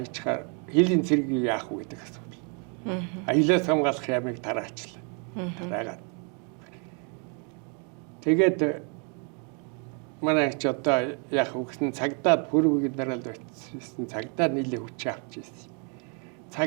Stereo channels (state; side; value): quieter; left; 38.4 dB